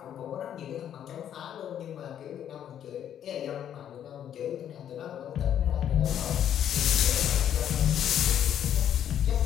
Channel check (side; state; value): right; quieter; 9.9 dB